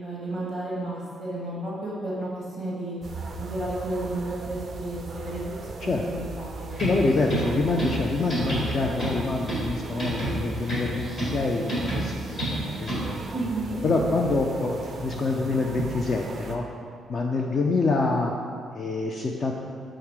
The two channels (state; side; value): normal; both; correlation 0.74